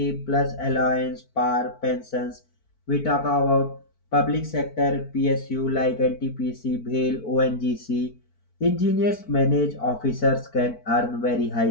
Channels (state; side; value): late; right; 4.5 ms